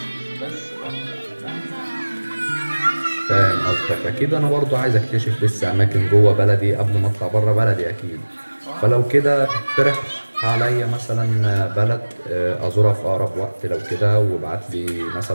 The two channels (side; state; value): both; inverted; correlation -1.00